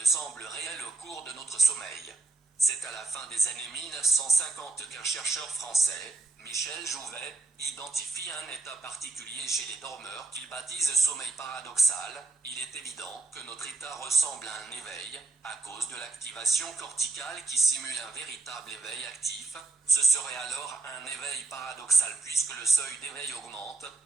semblent réelles au cours de notre sommeil? C'est à la fin des années 1950 qu'un chercheur français, Michel Jouvet, identifie un état particulier chez les dormeurs qu'il baptise sommeil paradoxal. Il est évident que notre état ressemble à un éveil, à cause de l'activation corticale qui simule un véritable éveil actif. Ce serait alors un éveil paradoxal puisque le seuil d'éveil augmente,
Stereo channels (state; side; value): quieter; left; 3.4 dB